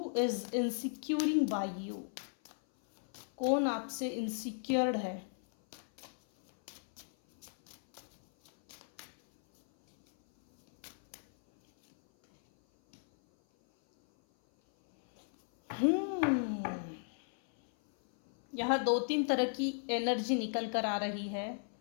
is insecuring by you? कौन आपसे इनसिक्योर्ड है? यहाँ दो तीन तरह की एनर्जी निकल कर आ रही है।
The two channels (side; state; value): right; silent; 54 dB below the other